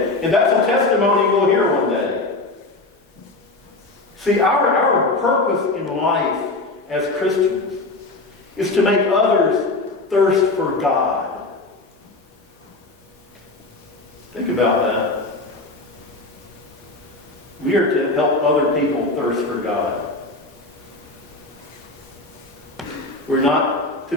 And that's a testimony we'll hear one day. See, our purpose in life as Christians is to make others thirst for God. Think about that. We are to help other people thirst for God. We're not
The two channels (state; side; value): quieter; right; 3.1 dB